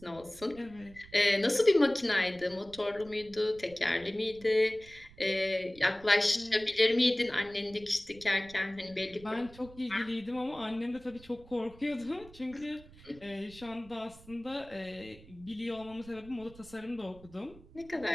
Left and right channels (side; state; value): right; noise; rumble, 21 dB below the sound